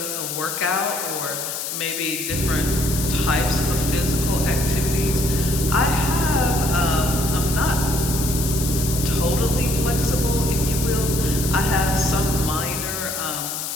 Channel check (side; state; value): left; noise; hiss, 4 dB below the sound